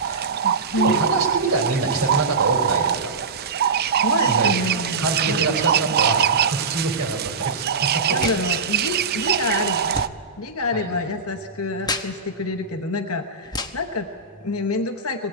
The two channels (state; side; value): quieter; left; 4.1 dB